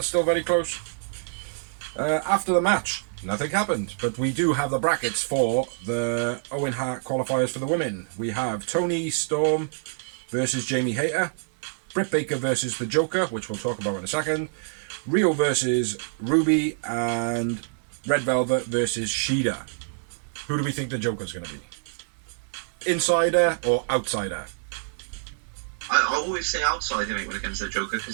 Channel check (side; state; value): left; silent; digital silence